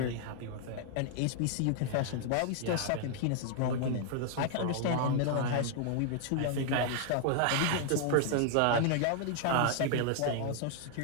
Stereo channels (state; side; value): different; both; correlation 0.00